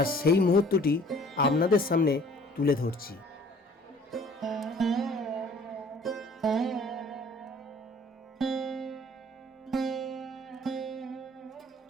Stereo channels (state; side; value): normal; both; correlation 0.53